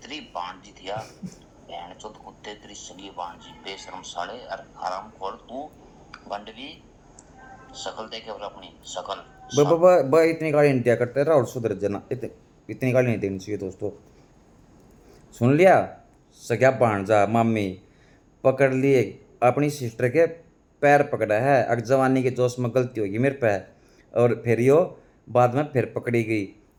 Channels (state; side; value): identical; both; correlation 1.00